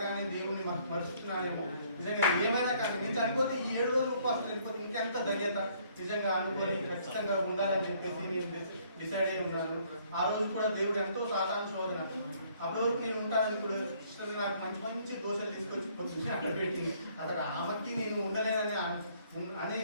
దేవుణ్ణి మరుస్తున్నానేమో, నిజంగా ఏమైనా కానీ నేను చనిపోతే ఈ 7 రోజులు ఉపవాసం చనిపోతే ఇంకెంత ధన్యత నిజంగా అనుకొని ఖచ్చితంగా ఉండాలని చెప్పేసి నేను డిసైడ్ అయి ఉన్నాను. ఆ రోజు కూడా దేవుడు ఎంతో సాధారణ శోధన. అప్పటి వరకు నేను ఉంటానని కూడా నాకు మంచి మంచి దోశలు తీసుకొచ్చి పొద్దున్నే అక్కడ పెట్టింది. అక్కడ ఆమెకి నేను ఉండలేనని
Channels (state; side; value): inverted; both; correlation -0.63